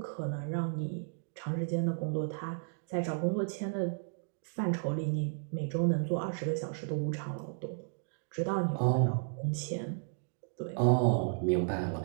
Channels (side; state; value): left; silent; digital silence